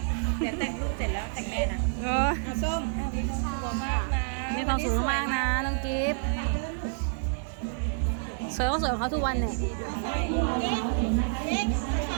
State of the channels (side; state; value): left; silent; digital silence